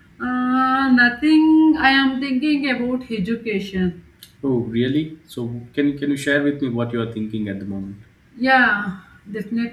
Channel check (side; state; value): both; identical; correlation 1.00